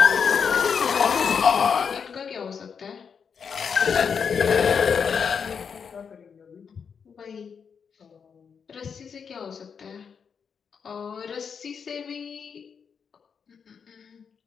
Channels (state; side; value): quieter; right; 6.5 dB